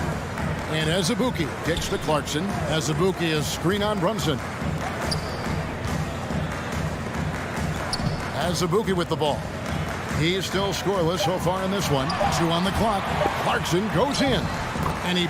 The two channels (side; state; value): both; identical; correlation 1.00